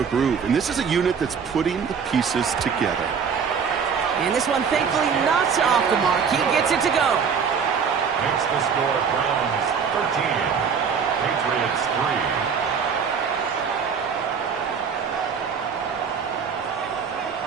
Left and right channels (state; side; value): quieter; left; 6.5 dB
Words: groove. And this is a unit that's putting the pieces together. And this one, thankfully, not off the mark. He gets it to go. Makes the score Browns 13. Patriots 3.